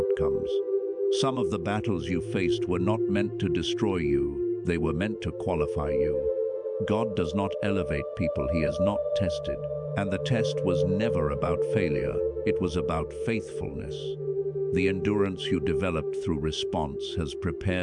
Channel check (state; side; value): identical; both; correlation 1.00